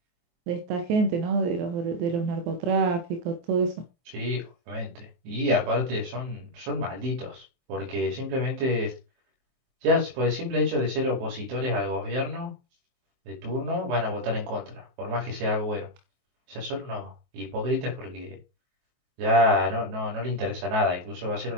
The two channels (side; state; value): left; late; 23 ms